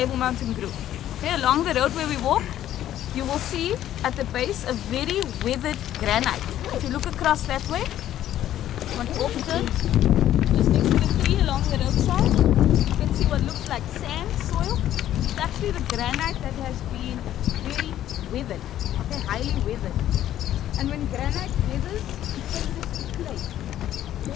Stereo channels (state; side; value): quieter; right; 12.2 dB